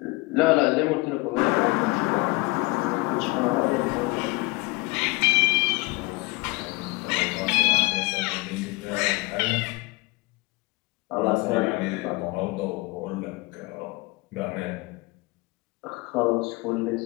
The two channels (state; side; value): quieter; right; 24.7 dB